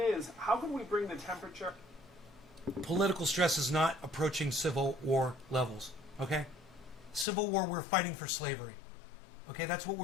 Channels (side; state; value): right; drops out; at 7.2 s